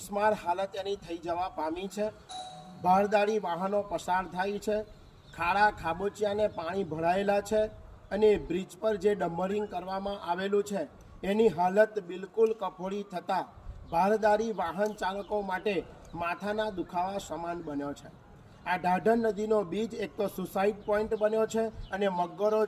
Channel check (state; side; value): identical; both; correlation 1.00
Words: હાલત એની થઈ જવા પામી છે। ભારદારી વાહનો પસાર થાય છે, ખાડા ખાબોચિયાને પાણી ભરાયેલા છે અને બ્રિજ પર જે ડમ્બરિંગ કરવામાં આવેલું છે એની હાલત બિલકુલ કફોડી થતાં ભારદારી વાહન ચાલકો માટે માથાના દુખાવા સમાન બન્યો છે। આ ઢાઢર નદીનો બીજ એક તો સુસાઇડ પોઈન્ટ બન્યો છે અને મગરો